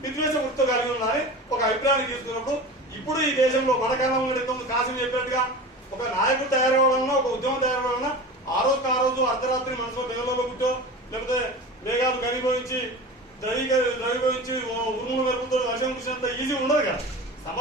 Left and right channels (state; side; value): normal; both; correlation 0.33